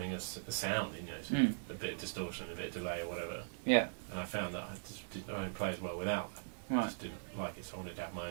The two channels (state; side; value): silent; left; digital silence